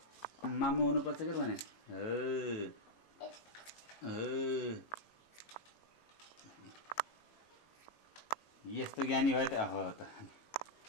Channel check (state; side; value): late; right; 18 ms